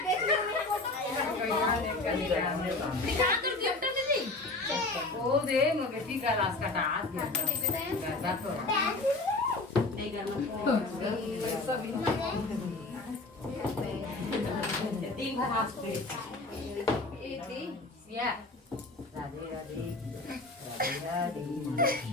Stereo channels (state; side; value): quieter; right; 3.2 dB